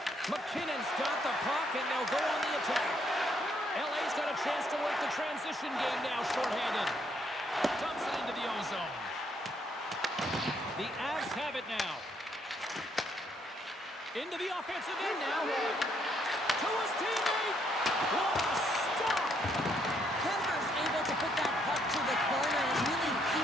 McKinnon's got the puck, and they'll go on the attack. LA's got a chance to work the transition game now, shorthanded. Dumps it into the O-zone. The Avs have it now. Into the offensive end now. to his teammate. What a stop! Kemper's able to put that puck to the corner and really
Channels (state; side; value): normal; both; correlation 0.72